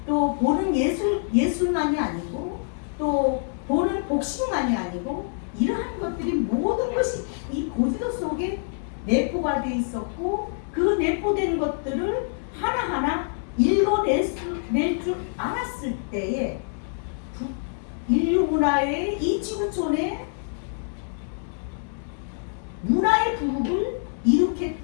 또 보는 예술만이 아니고 또 보는 복식만이 아니고 이러한 것들이 모든 것이 이 고지도 속에 내포가 돼 있었고 그 내포된 것들을 하나하나 읽어낼 줄 알았을 때에 인류 문화의 이 지구촌의 문화의 부국을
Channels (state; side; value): silent; right; 61 dB below the other